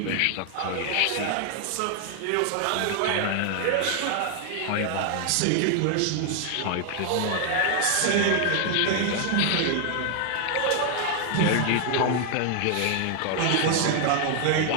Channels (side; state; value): both; different; correlation 0.00